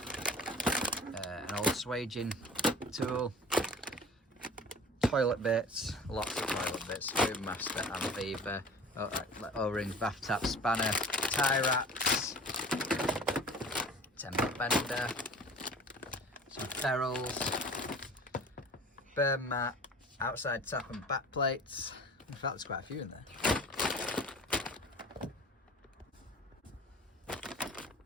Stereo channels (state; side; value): normal; both; correlation 0.42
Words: an old swaging tool, toilet bits, lots of toilet bits, Boom Master and Beaver, O-rings, bath tap, spanner, tie wraps, temper bender, some ferrules, burn mat, outside tap and back plates. In fact, there's quite a few in there.